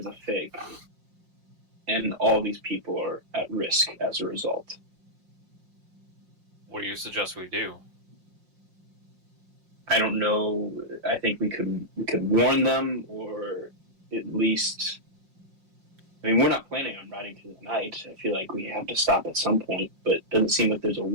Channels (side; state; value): left; late; 5.6 ms